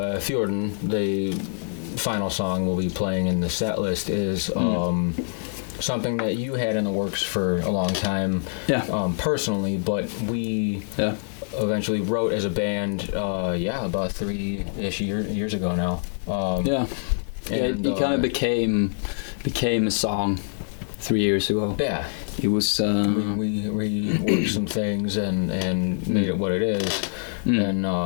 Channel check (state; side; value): silent; right; digital silence